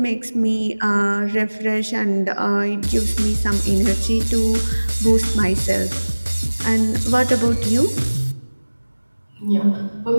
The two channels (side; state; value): both; inverted; correlation -1.00